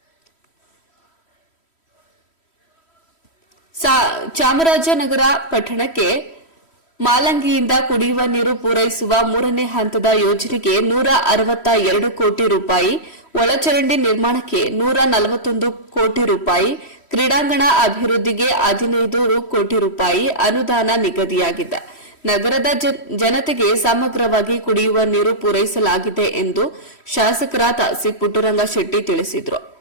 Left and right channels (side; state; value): right; late; 3.1 ms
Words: ಚಾಮರಾಜನಗರ ಪಟ್ಟಣಕ್ಕೆ ಮಾಲಂಗಿಯಿಂದ ಕುಡಿಯುವ ನೀರು ಪೂರೈಸುವ 3ನೇ ಹಂತದ ಯೋಜನೆಗೆ 162 ಕೋಟಿ ರೂಪಾಯಿ, ಒಳಚರಂಡಿ ನಿರ್ಮಾಣಕ್ಕೆ 141 ಕೋಟಿ ರೂಪಾಯಿ, ಕ್ರೀಡಾಂಗಣ ಅಭಿವೃದ್ಧಿಗೆ 15 ಕೋಟಿ ರೂಪಾಯಿ ಅನುದಾನ ನಿಗದಿಯಾಗಿದೆ. ನಗರದ ಜನತೆಗೆ ಸಮಗ್ರವಾಗಿ ಕುಡಿಯುವ ನೀರು ಪೂರೈಸಲಾಗಿದೆ ಎಂದು ಶಾಸಕರಾದ ಸಿ ಪುಟ್ಟರಂಗ ಶೆಟ್ಟಿ ತಿಳಿಸಿದರು.